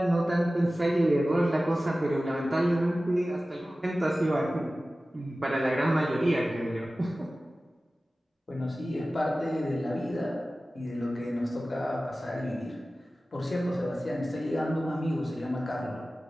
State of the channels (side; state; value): both; normal; correlation 0.96